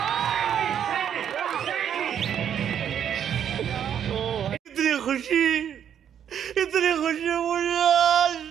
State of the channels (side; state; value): left; quieter; 9.0 dB